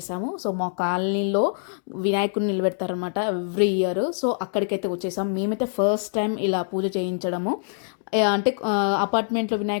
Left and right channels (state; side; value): silent; right; digital silence